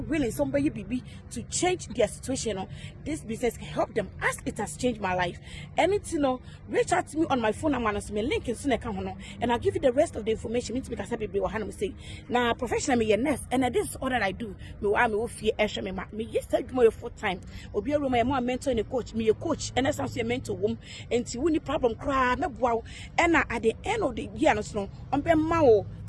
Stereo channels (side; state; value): both; identical; correlation 1.00